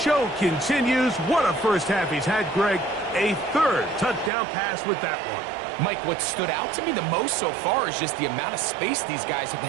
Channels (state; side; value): drops out; left; at 4.3 s